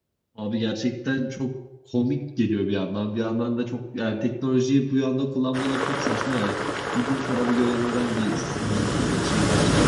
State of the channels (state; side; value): identical; both; correlation 1.00